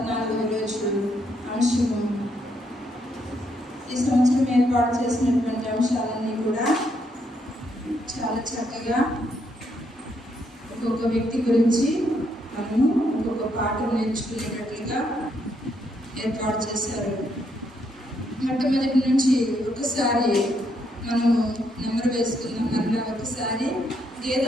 రోజు అంశము. ఈ సంవత్సరం ఏర్పాటు చేసినటువంటి అంశాలన్నీ కూడా చాలా చక్కగా ఒక్కొక్క వ్యక్తి గురించి మనము ఒక్కొక్క పాఠం నేర్చుకునేటట్లుగా ఏర్పాటు చేశారు. మొట్టమొదటి నుంచి ఒకసారి మనము నెంబర్ వేసుకుందాం. మరలా ఒకసారి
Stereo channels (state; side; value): normal; both; correlation 0.75